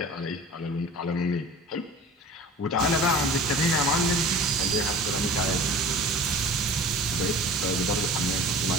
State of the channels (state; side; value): normal; both; correlation 0.41